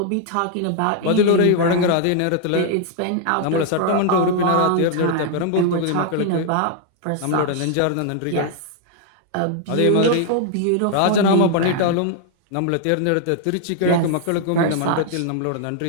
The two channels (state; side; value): different; both; correlation 0.00